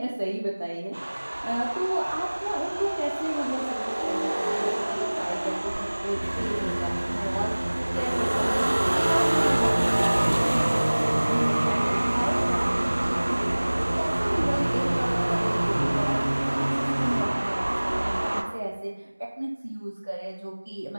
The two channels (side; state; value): both; inverted; correlation -1.00